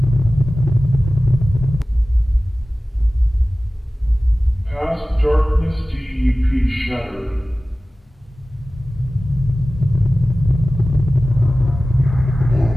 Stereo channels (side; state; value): both; normal; correlation 0.97